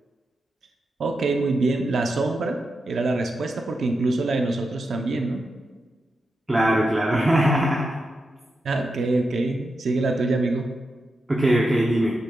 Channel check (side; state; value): both; normal; correlation 0.88